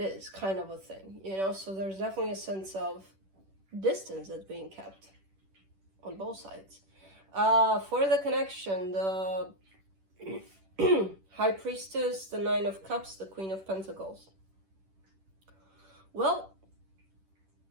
kind of a thing, you know? So there's definitely a sense of distance that's being kept on both sides. For the connection, the High Priestess, the Nine of Cups, the Queen of Pentacles. Well,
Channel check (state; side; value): late; left; 10 ms